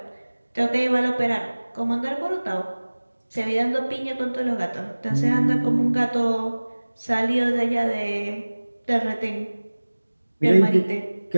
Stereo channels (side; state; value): both; inverted; correlation -1.00